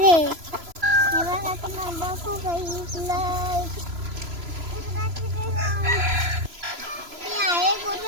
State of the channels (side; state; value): left; late; 3.0 ms